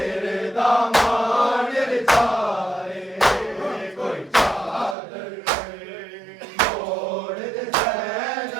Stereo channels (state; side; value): drops out; left; at 5.0 s